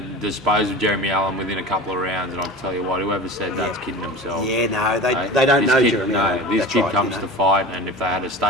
dispose of Jeremy Allen within a couple of rounds, and I'll tell you what, whoever said that's kidding themselves. Yeah, no, they don't know Jeremy Allen. No, this kid comes to fight, and if they had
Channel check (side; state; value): both; normal; correlation 0.33